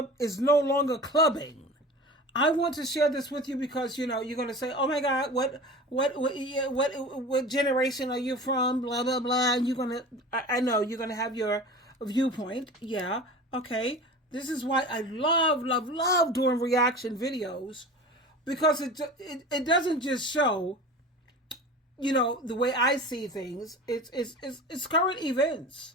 is no longer clubbing. I want to share this with you because you're going to say, "Oh my God, what generation are you from?" Blah blah blah. And I know you're gonna have your viewpoint. Yeah, okay. This is why I love doing reaction videos, because it doesn't just show, the way I see things. It's current events.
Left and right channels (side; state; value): both; normal; correlation 0.35